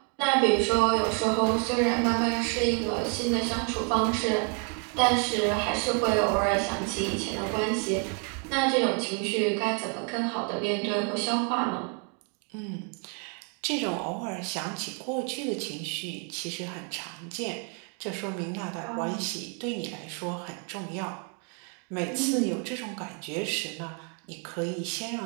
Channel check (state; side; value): quieter; left; 39.8 dB